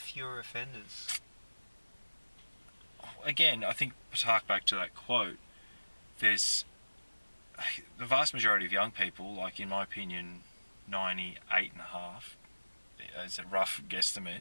fewer offenders. again, I think to hark back to that quote, there's the vast majority of young people, like in my opinion, 98.5, as a rough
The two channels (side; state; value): both; inverted; correlation -1.00